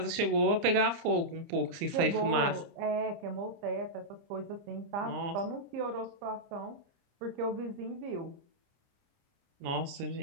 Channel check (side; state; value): left; late; 29 ms